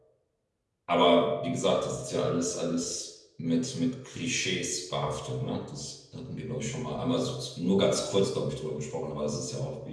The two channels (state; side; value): identical; both; correlation 1.00